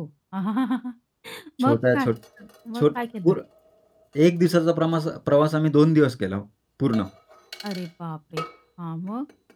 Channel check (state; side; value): identical; both; correlation 1.00